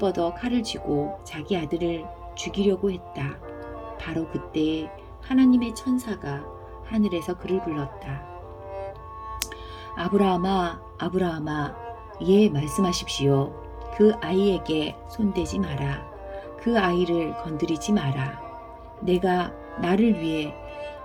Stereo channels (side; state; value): both; identical; correlation 1.00